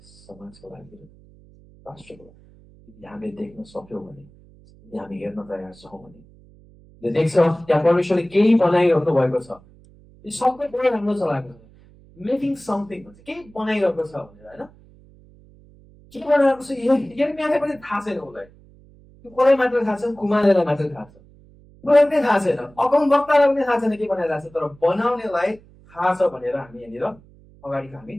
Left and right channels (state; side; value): noise; right; hum, 25 dB below the sound